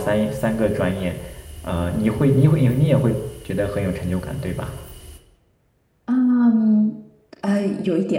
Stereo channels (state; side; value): identical; both; correlation 1.00